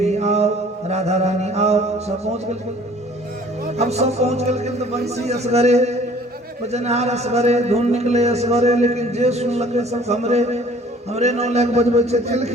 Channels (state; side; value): normal; both; correlation 0.53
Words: आओ राधा रानी आओ सब पहुंच गए अब सब पहुंच गए तो बंसी असगरे भजनहार असगरे धुन निकले असगरे लेकिन जे सुन लगे सब हमरे नौला के बजबै छे